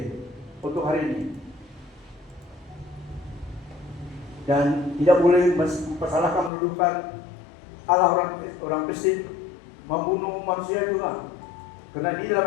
untuk hari ini. Dan tidak boleh mempersalahkan, menuduhkan Allah orang Kristen membunuh manusia juga. Karena di dalam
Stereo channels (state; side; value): drops out; right; at 6.5 s